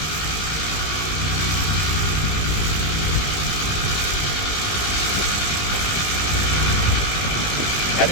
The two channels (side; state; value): right; late; 20 ms